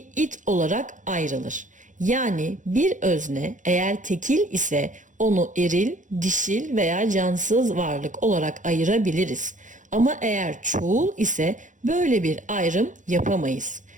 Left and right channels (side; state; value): left; late; 0.37 ms